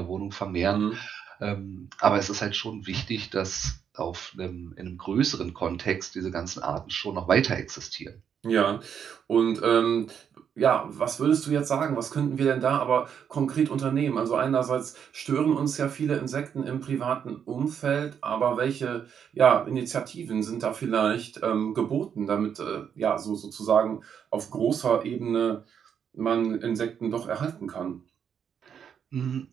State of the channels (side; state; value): left; quieter; 7.9 dB